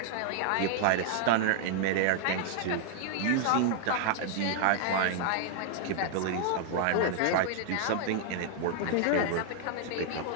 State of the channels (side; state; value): both; different; correlation -0.01